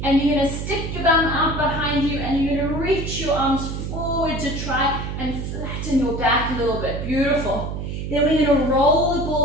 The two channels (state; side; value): noise; right; hum, 5 dB below the sound